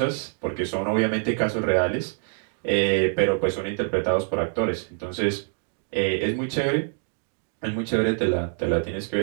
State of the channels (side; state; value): left; silent; 61 dB below the other